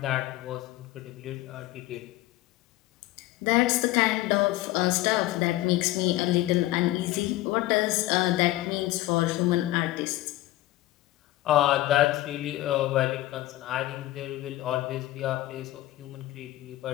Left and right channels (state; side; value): quieter; right; 16.7 dB